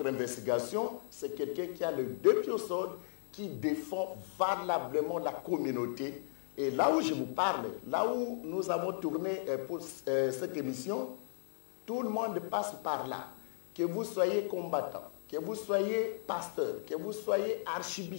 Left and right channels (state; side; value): silent; right; 54 dB below the other